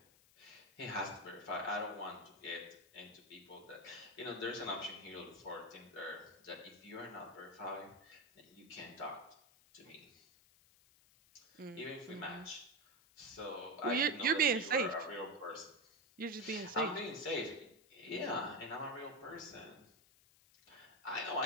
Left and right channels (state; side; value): noise; left; hiss, 27 dB below the sound